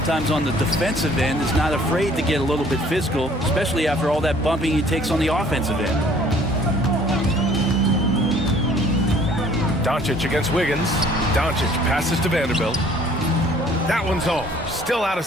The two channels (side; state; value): both; normal; correlation 0.56